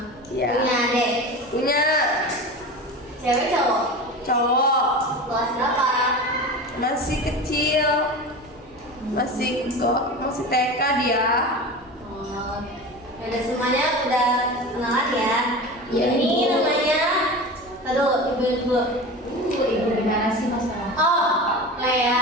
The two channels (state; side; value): normal; both; correlation 0.30